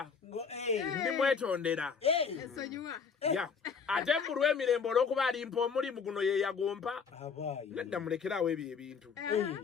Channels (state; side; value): quieter; right; 5.9 dB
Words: Yeah. Ate mbulwa emirembe olw'okuba alimpa omulimu guno ye yagompa. Nedda mulekerawo ebyo ebintu.